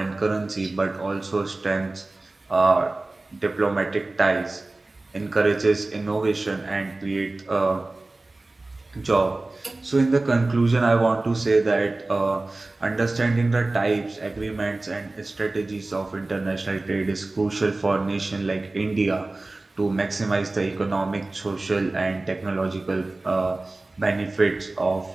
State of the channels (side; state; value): left; quieter; 3.0 dB